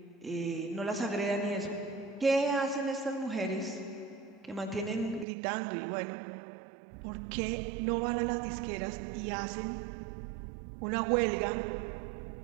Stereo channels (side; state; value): left; drops out; at 5.2 s